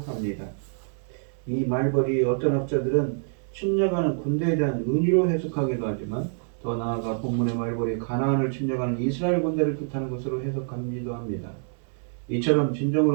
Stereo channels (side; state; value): left; silent; digital silence